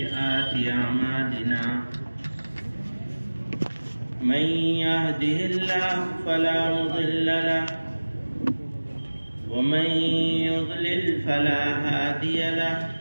أعمالنا من يهده الله فلا مضل له ومن يضلل فلا هادي له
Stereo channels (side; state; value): both; inverted; correlation -1.00